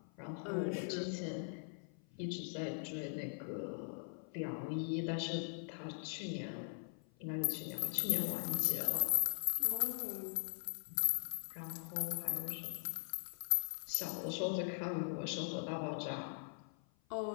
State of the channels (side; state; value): right; silent; 50 dB below the other